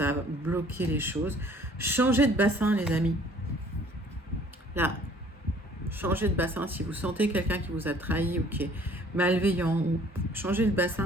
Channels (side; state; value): both; normal; correlation 0.55